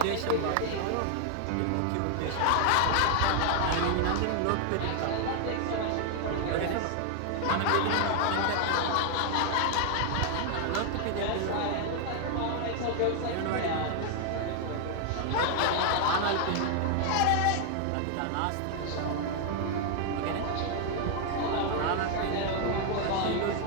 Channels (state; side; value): different; both; correlation 0.00